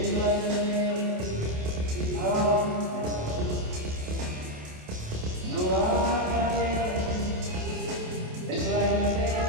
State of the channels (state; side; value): late; left; 28 ms